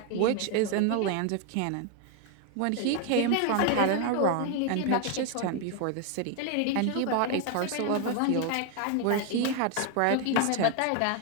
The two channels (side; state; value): both; different; correlation 0.01